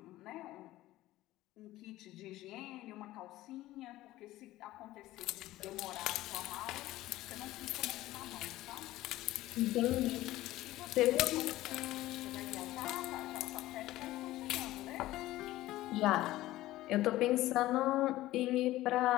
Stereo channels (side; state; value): right; quieter; 16.2 dB